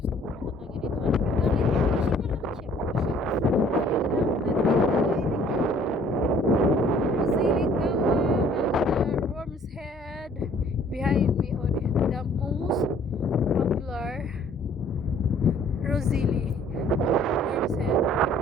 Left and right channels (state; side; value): normal; both; correlation 0.57